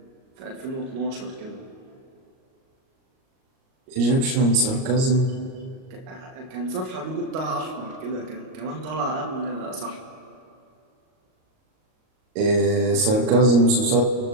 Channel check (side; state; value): left; late; 38 ms